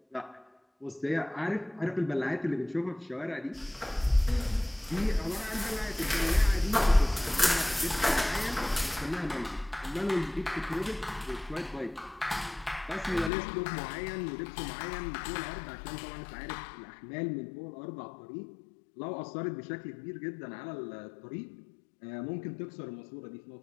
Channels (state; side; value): drops out; right; at 13.3 s